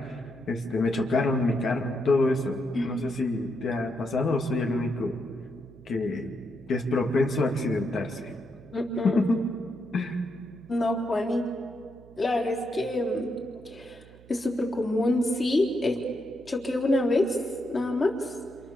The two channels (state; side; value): noise; right; hum, 22 dB below the sound